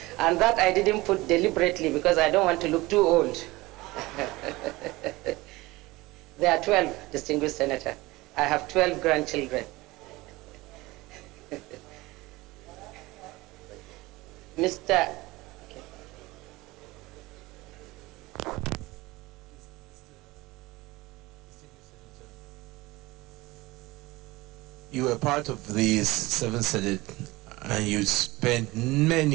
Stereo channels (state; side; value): quieter; left; 20.6 dB